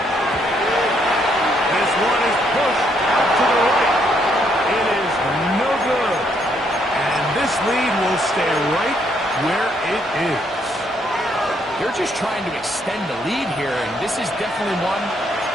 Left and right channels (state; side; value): normal; both; correlation 0.72